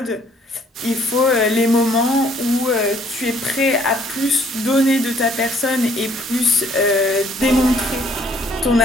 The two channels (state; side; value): normal; both; correlation 0.62